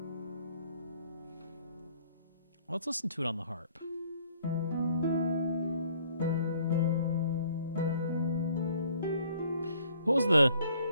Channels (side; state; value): both; inverted; correlation -0.60